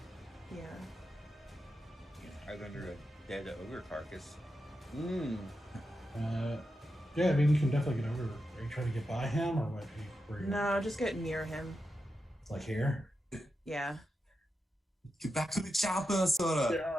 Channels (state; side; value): normal; both; correlation 0.89